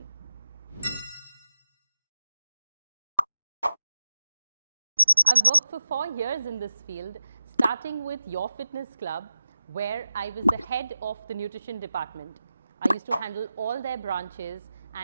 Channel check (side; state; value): both; inverted; correlation -0.93